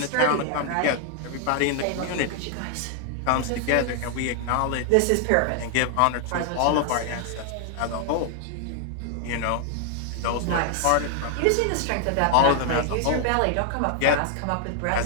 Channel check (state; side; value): different; both; correlation 0.00